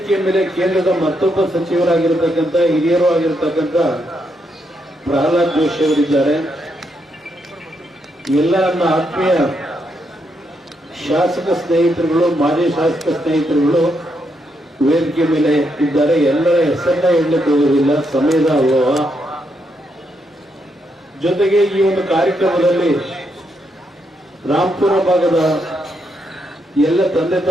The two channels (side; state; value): both; normal; correlation 0.79